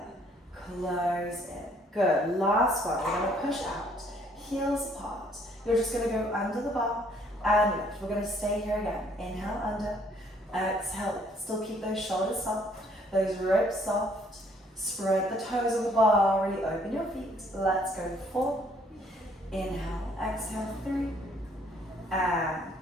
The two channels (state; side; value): normal; both; correlation 0.63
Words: Close in. Good. Last one. We're going to push out. Heels apart. You're just going to go under the bar and lift. We're going to stay here again. Inhale under. Exhale lift. Still keep those shoulders soft. Those ribs soft. Spread the toes on the bar. Really open your feet. Let's go 4. Inhale. Exhale 3. And